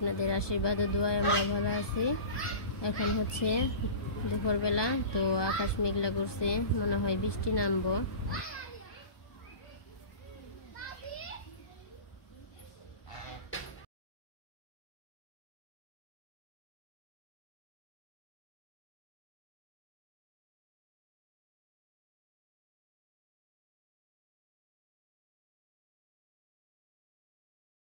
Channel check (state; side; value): late; right; 1.2 ms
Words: আশীর্বাদ ও দোয়ায় আমরা ভালো আছি। এখন হচ্ছে দুপুরবেলা, তো আকাশ মেঘলা করছে, মনে হয় বৃষ্টি নামবো।